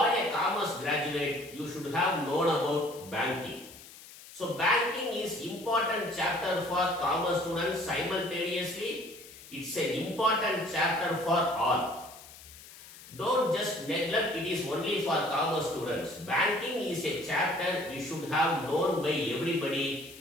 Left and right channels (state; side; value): noise; left; hiss, 18 dB below the sound